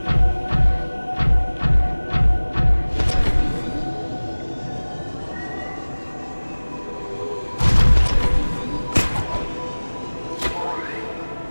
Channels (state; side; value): inverted; both; correlation -1.00